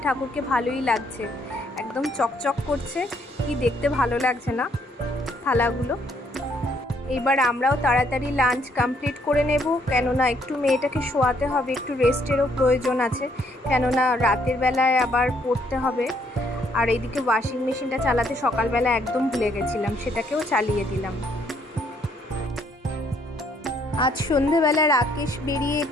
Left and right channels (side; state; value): both; normal; correlation 0.69